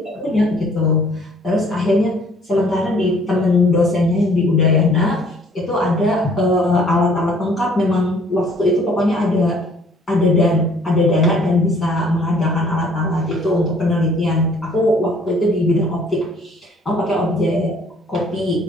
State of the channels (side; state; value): both; normal; correlation 0.58